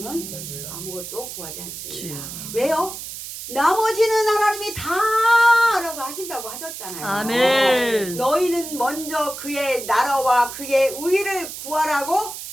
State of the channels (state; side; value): noise; right; hiss, 10 dB below the sound